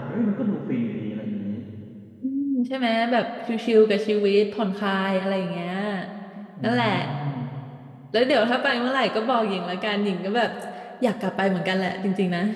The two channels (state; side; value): identical; both; correlation 1.00